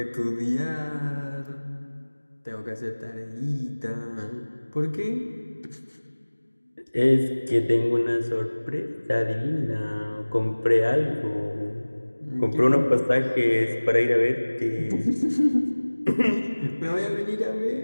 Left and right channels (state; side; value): inverted; both; correlation -1.00